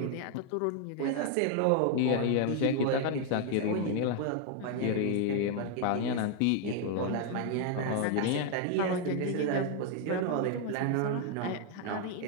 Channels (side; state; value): both; different; correlation 0.00